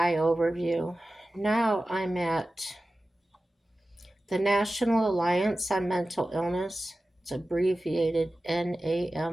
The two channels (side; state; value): both; normal; correlation 0.95